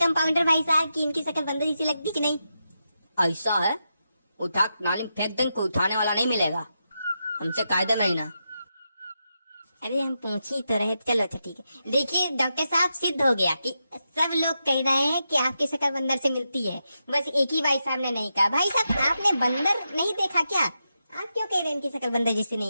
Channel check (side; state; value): both; inverted; correlation -0.87